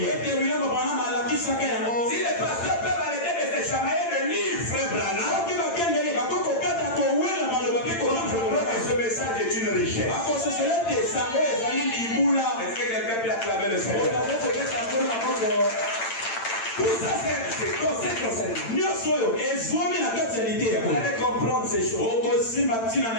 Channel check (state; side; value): late; right; 8.9 ms